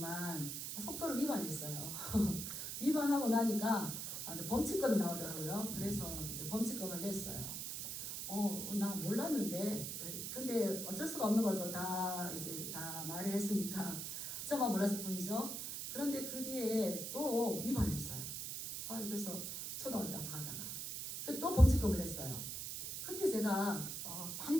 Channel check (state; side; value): noise; right; hiss, 5 dB below the sound